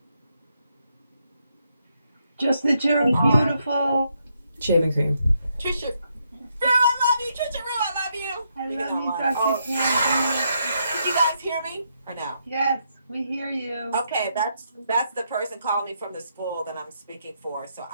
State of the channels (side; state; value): both; inverted; correlation -0.78